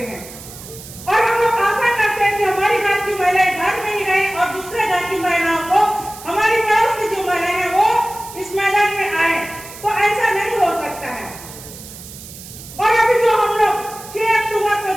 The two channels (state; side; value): noise; right; hiss, 15 dB below the sound